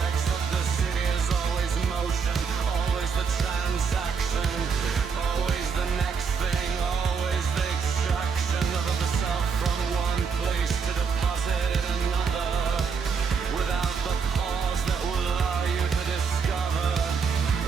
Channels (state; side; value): quieter; left; 5.8 dB